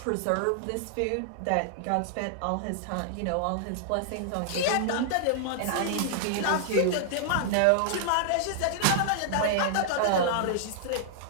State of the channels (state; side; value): different; both; correlation -0.01